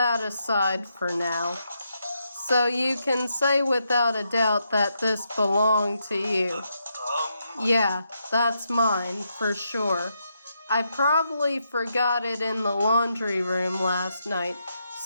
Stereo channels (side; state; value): both; inverted; correlation -0.81